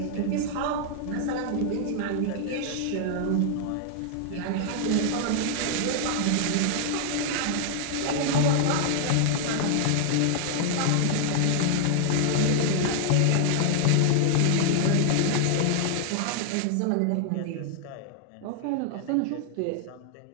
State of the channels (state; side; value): different; both; correlation 0.00